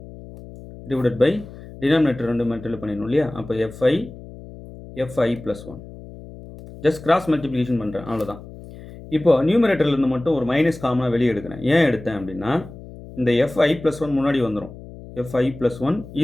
divided by denominator 2 multiply பண்ணிடணும் இல்லையா. அப்போ fi plus 1 just cross multiplication பண்ணுறேன், அவ்வளோதான். இப்போது நியூமரேட்டர்லேருந்து மட்டும் ஒரு மைனஸ் காமனாக வெளியே எடுக்கிறேன். ஏன் எடுத்தேன் அப்படின்னா, இந்த fi plus 1 முன்னாடி வந்துடும், fi plus 1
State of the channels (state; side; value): noise; left; hum, 16 dB below the sound